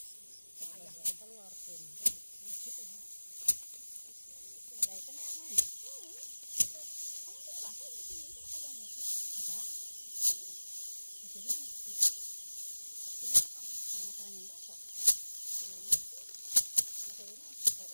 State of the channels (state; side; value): inverted; both; correlation -1.00